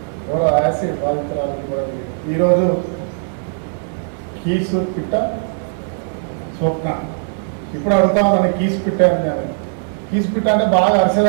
ఎవరో యాసిడ్ బాధితురాలకి కూడా ఈరోజు కీసు పిట్ట స్వప్న ఇప్పుడు అడుగుతా ఉన్నాను కీసు పిట్ట అని. కీసు పిట్ట అంటే బాగా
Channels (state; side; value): silent; left; 66 dB below the other